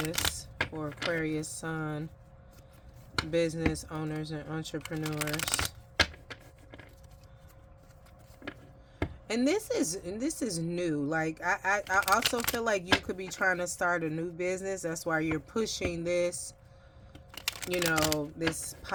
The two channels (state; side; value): identical; both; correlation 1.00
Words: for Aquarius Sun business owners and entrepreneurs. And this is new. Like, I also feel like you could be trying to start a new business. That's why you're pushing this, you know, this